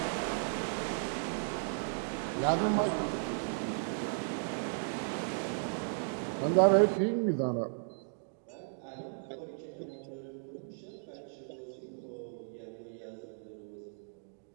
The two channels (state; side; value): silent; left; digital silence